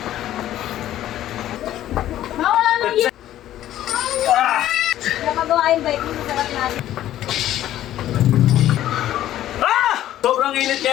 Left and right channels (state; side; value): quieter; right; 12.8 dB